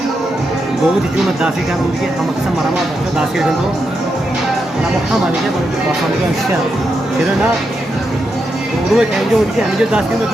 बहुत ही जो दासी का उनके हम अक्सर मरामा बच्चों दासी के तो ना मुख्य मानी है बड़े पसंद का विषय फिर ना उर्वे कहीं जो उनकी हम जो दासी में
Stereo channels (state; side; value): normal; both; correlation 0.84